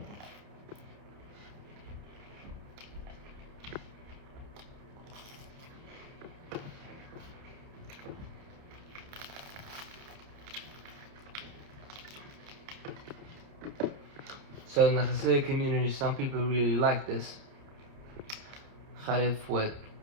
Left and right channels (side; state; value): left; late; 29 ms